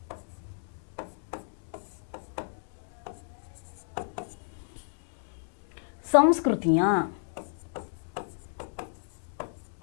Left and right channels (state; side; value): silent; right; digital silence